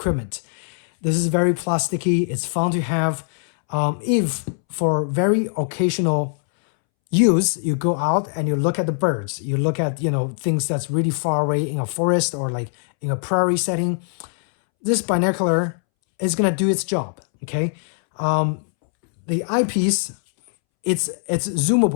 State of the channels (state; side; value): silent; right; 65 dB below the other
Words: This is very plasticky. It's fun to have. If for very occasional use, you go out and you look at the birds, you look at, you know, things that's really far away in a forest or like in a prairie setting, this binocular is gonna do its job. Okay, the eyepiece, it's